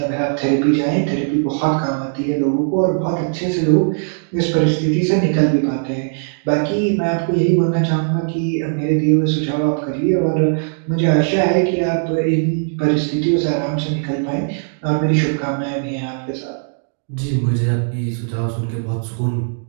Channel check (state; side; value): silent; left; digital silence